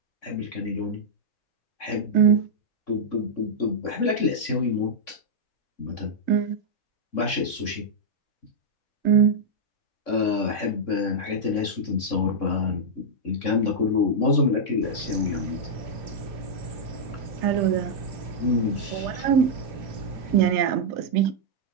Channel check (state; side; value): late; right; 3.6 ms